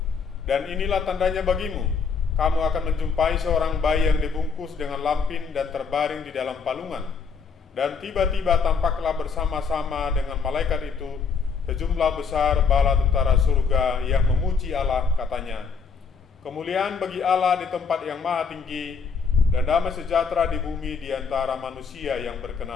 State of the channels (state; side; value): quieter; right; 5.6 dB